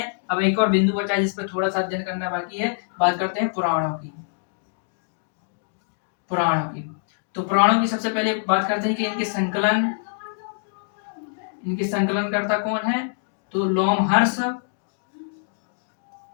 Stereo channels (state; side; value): silent; right; digital silence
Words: अब एक और बिंदु बचा है जिस पर थोड़ा सा अध्ययन करना बाकी है। बात करते हैं पुराणों की। पुराणों की तो पुराणों की सबसे पहले बात करते हैं कि इनके संकलनकर्ता कौन है। तो लोमहर्ष